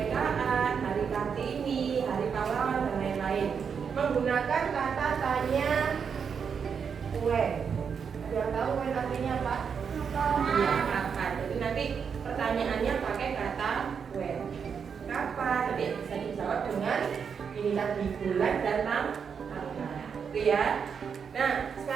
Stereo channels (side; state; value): left; quieter; 6.6 dB